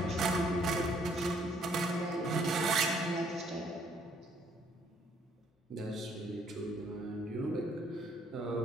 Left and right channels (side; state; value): both; normal; correlation 0.66